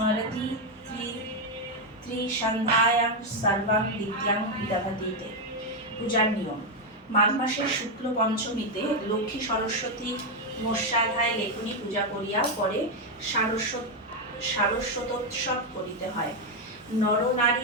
त्रिसन्ध्यायां सर्वां विद्यां दधतीते। পূজার নিয়ম। মাঘ মাসের শুক্ল পঞ্চমীতে লক্ষ্মী সরস্বতী মৎস্যাধায় লেখনী পূজা করিয়া পরে সারস্বতোৎসব করিতে হয়।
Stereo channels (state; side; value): normal; both; correlation 0.04